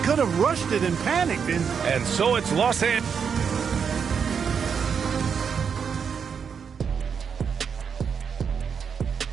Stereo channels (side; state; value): left; quieter; 6.7 dB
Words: could have rushed it and panicked. And so it's Los Angeles.